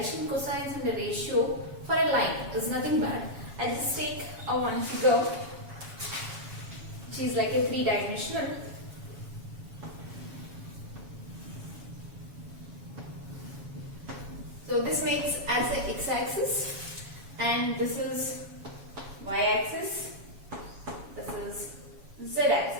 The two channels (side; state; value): left; late; 7.2 ms